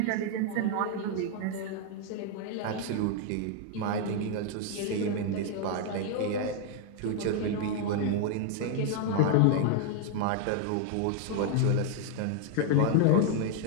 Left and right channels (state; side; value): different; both; correlation 0.00